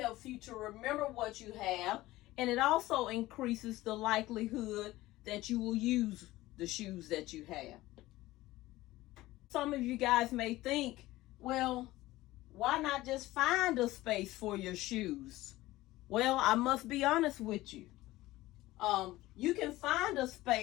you to remember what you have, and it also increases the likelihood that you will use the shoes that you have. Some of you guys may think, well, why not just find a space for your shoes? Well, I must be honest with you. You can find a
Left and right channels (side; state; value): right; quieter; 17.5 dB